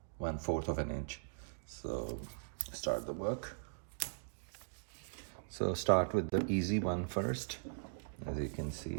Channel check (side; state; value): left; silent; digital silence